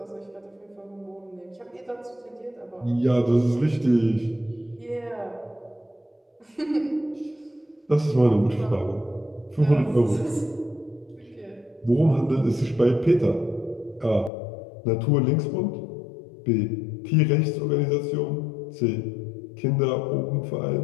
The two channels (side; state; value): right; drops out; at 14.3 s